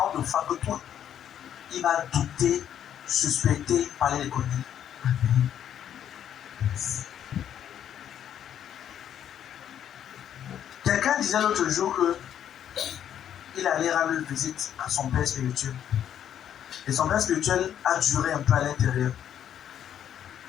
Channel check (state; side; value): quieter; right; 9.9 dB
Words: de foi que toi, il va douter, suspecter, parler les conneries. Quelqu'un disait l'autre jour que il allait rendre visite à son père spirituel. Et son père spirituel a duré un peu à l'intérieur.